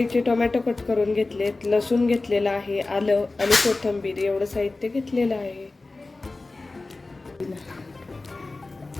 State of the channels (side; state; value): right; quieter; 3.3 dB